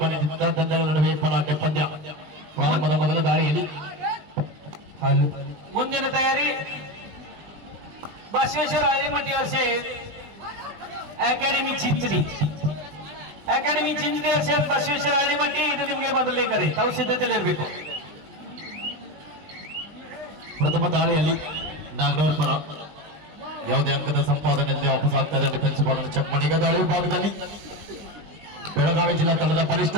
ತಂಡಗಳ ನಡುವೆ ಪಲಾಟೆ ಪಂದ್ಯ. ಪ್ರಾರಂಭದ ಮೊದಲ ದಾಳಿಯಲ್ಲಿ ಮುಂದಿನ ತಯಾರಿ बसवेश्वर हळदीमठी असे अकॅडमी चिंचणी असेल बसवेश्वर हळदीमठी ಇದು ನಿಮಗೆ ಬದಲೇಕರಿ ತಾವು ಸಿದ್ಧತೆಯಲ್ಲಿ ಇರಬೇಕು. ಪ್ರಥಮ ದಾಳಿಯಲ್ಲಿ ನಾಗನೂರ್ ಪರ ಯಾವುದೇ ಅಂಕದ ಸಂಪಾದನೆಯಲ್ಲಿ ವಾಪಸ್ ಆಗ್ತಾ ಇದೆ. ಡಿಫೆನ್ಸ್ ಭಾಗದ ಚಮ್ಮಣಿಗ ದಾಳಿ ಭಾಗದಲ್ಲಿ ಬೆಳಗಾವಿ ಜಿಲ್ಲಾ ತಂಡದ ಬಲಿಷ್ಠ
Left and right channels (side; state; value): left; late; 20 ms